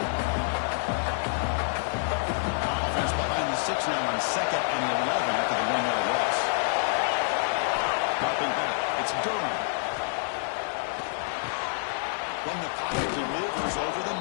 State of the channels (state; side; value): silent; right; digital silence